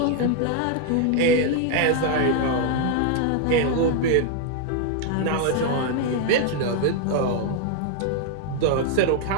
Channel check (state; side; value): different; both; correlation 0.00